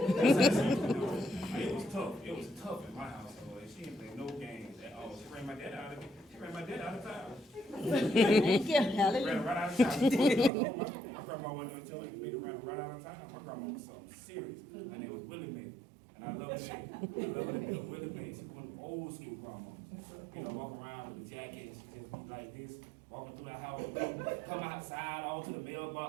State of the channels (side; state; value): left; drops out; at 10.5 s